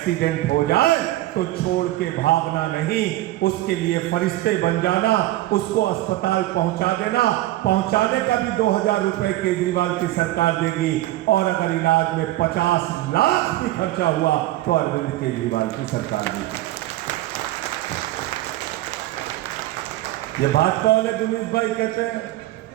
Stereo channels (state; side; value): quieter; left; 16.3 dB